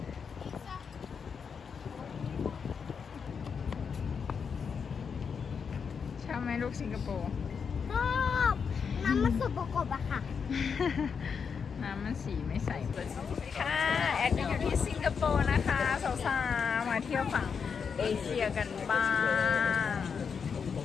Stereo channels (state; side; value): quieter; right; 6.2 dB